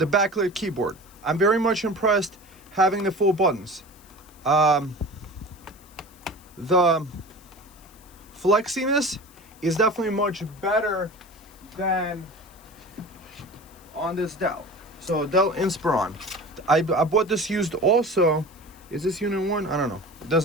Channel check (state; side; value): noise; left; hiss, 26 dB below the sound